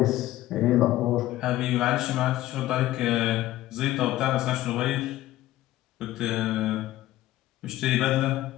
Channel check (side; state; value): right; quieter; 15.4 dB